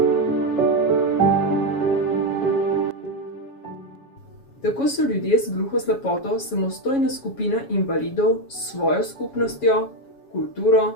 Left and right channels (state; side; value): late; right; 7.2 ms